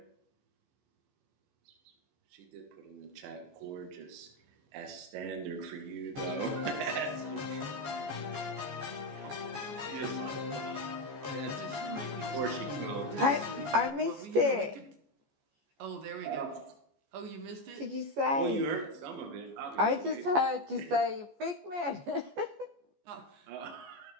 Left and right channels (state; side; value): late; left; 14 ms